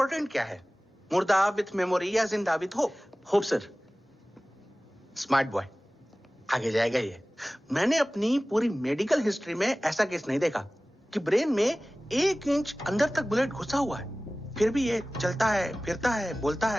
क्या है? मुर्दा विथ मेमोरी या जिंदा with hope? Hope sir. Smart boy, आगे जाएगा ये। मैंने अपनी पूरी मेडिकल हिस्ट्री में ऐसा केस नहीं देखा कि ब्रेन में 1 इंच अंदर तक बुलेट घुसा हुआ है, फिर भी ये चलता है, फिरता है, बोलता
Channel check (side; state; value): both; normal; correlation 0.98